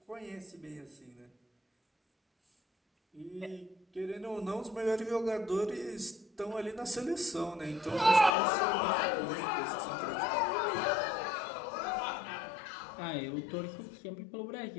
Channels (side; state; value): right; drops out; at 8.3 s